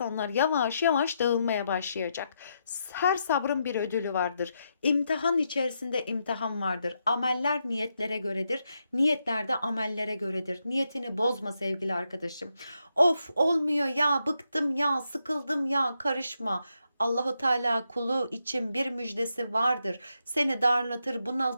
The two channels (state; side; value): inverted; both; correlation -0.82